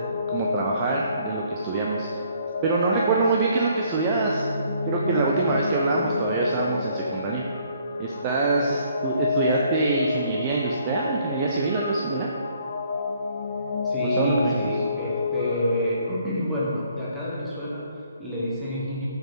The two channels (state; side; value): inverted; both; correlation -0.64